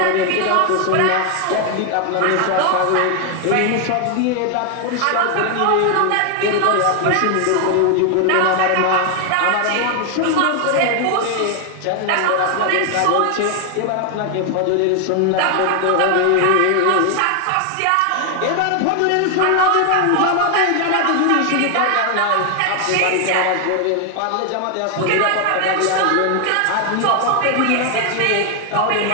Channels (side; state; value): both; different; correlation 0.00